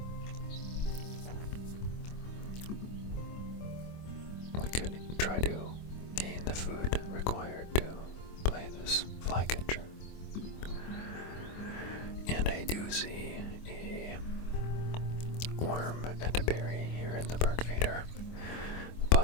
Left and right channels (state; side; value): late; right; 25 ms